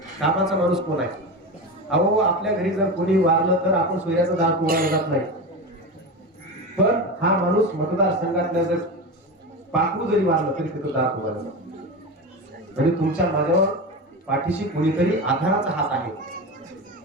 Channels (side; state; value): both; normal; correlation 0.23